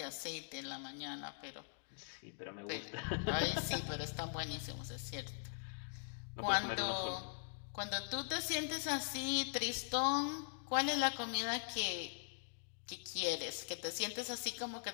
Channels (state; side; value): silent; right; digital silence